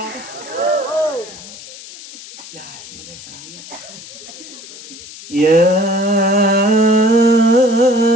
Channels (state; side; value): noise; left; hiss, 16 dB below the sound